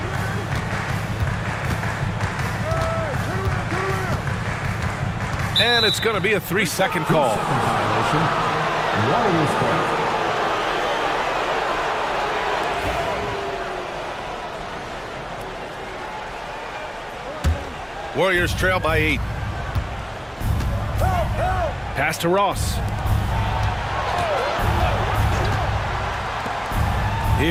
And it's going to be a 3-second call. Violation. Warriors ball. Warriors trail by 8. Pass to Ross.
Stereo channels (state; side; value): identical; both; correlation 1.00